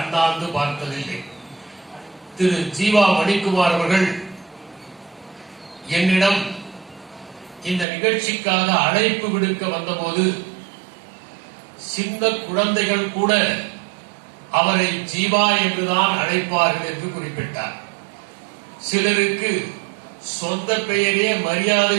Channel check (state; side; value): drops out; left; at 7.9 s